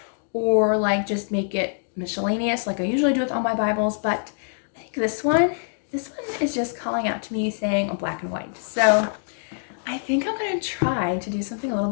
or just make it miscellaneous like I usually do with all my Bibles. But I think this one is just calling out to me saying black and white. So I think I'm going to try to do something a little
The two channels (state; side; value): silent; right; digital silence